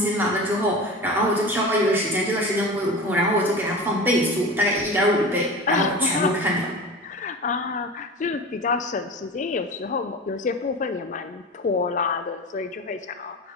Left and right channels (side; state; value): both; normal; correlation 0.32